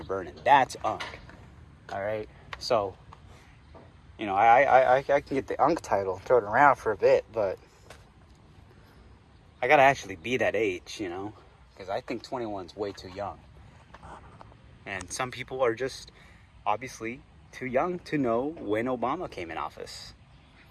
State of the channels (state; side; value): identical; both; correlation 1.00